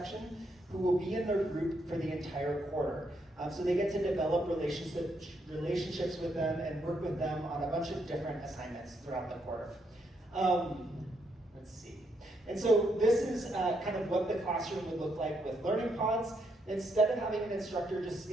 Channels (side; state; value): both; normal; correlation 0.77